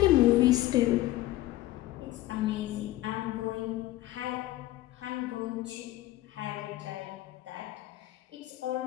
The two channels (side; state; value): right; quieter; 16.1 dB